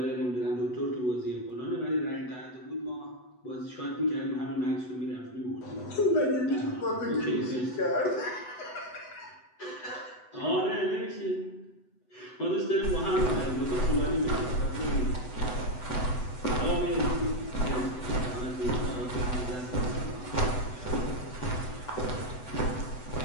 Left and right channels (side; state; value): right; late; 8.0 ms